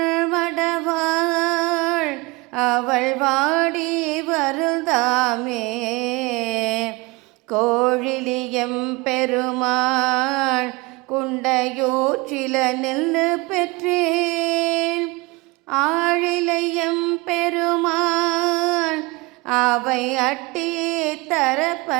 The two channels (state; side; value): quieter; left; 24.6 dB